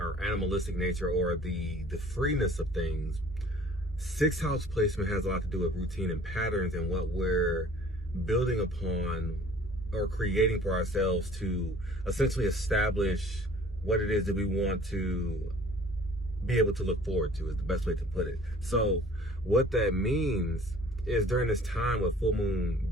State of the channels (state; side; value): normal; both; correlation 0.50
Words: animalistic nature, or the freeness of things. 6th house placement has a lot to do with routine and patterns and what we're building upon or creating for ourselves to essentially establish what it is that we want to be able to look forward to, is the best way to put it. So what that means is during this time with full moon